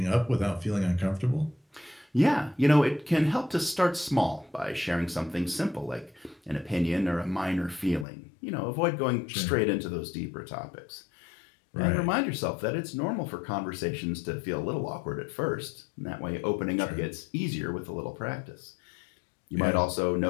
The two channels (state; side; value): drops out; right; at 8.1 s